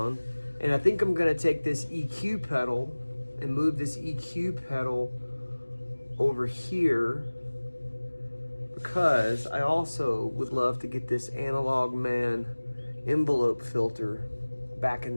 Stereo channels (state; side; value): inverted; both; correlation -1.00